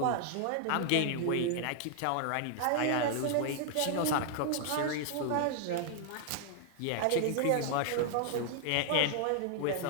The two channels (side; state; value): both; different; correlation 0.00